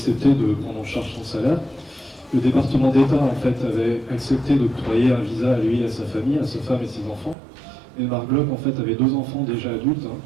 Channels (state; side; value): drops out; left; at 7.4 s